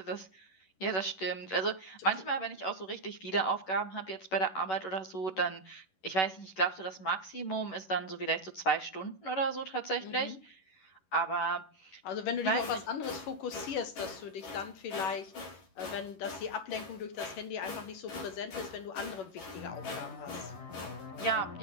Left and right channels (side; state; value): right; late; 11 ms